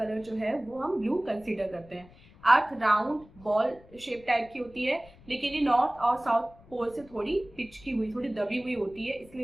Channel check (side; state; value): left; noise; rumble, 24 dB below the sound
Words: जो है वो हम ब्लू कंसीडर करते हैं। अर्थ राउंड बॉल शेप टाइप की होती है, लेकिन ये नॉर्थ और साउथ पोल से थोड़ी पिचकी हुई, थोड़ी दबी हुई होती है,